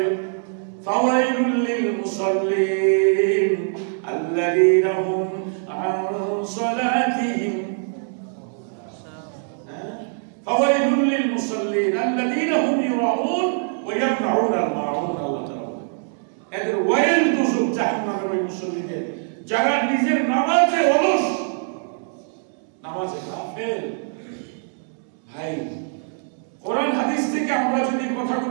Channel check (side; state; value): left; silent; 63 dB below the other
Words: ফাওয়াইলুল লিল মুসাল্লিন আল্লাযীনা হুম আন সালাতিহিম, ফাওয়াইলুল লিল মুসাল্লিন আল্লাযীনা হুম ইউরাউন ওয়া ইয়ামনাউন আল মাউন। আল্লাহ তাআলা এদের ওয়াইল দুজক, জাহান্নামের ওই মুসল্লিদের যারা নিজের নামাজে অলস, নামাজে গাফেল। ভাই, কোরআন হাদিস থেকে আমরা যদি